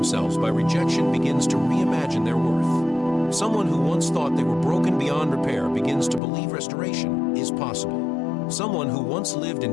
by rejection begins to reimagine their worth. Someone who once thought they were broken beyond repair begins to believe restoration is possible. Someone who once lived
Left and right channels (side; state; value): right; drops out; at 6.2 s